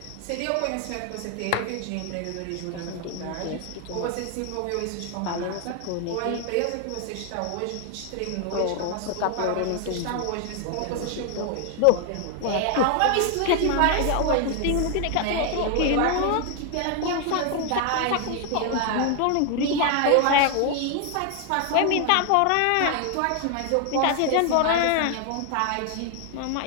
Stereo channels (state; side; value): different; both; correlation 0.00